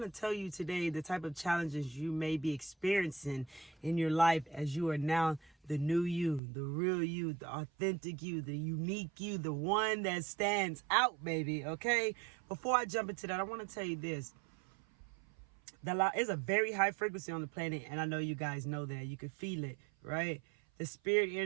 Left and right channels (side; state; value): left; drops out; at 6.4 s